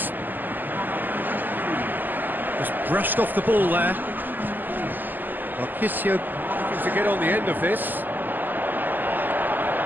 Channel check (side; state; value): left; late; 0.088 ms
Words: Just brushed off the ball there. Marchisio looking to get on the end of this.